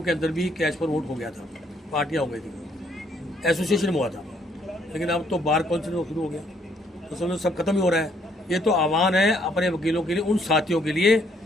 के अंदर भी कैश पर वोट हो गया था, पार्टियाँ हो गई थी, एसोसिएशन में हुआ था, लेकिन अब तो बार काउंसिल में शुरू हो गया, तो समझो सब खत्म ही हो रहा है। ये तो आह्वान है अपने वकीलों के लिए, उन साथियों के लिए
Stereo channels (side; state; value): both; normal; correlation 0.68